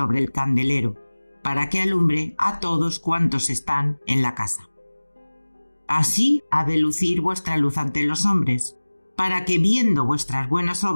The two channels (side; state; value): both; inverted; correlation -1.00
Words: el candelero, para que alumbre a todos cuantos están en la casa. Así ha de lucir vuestra luz ante los hombres, para que viendo vuestras buenas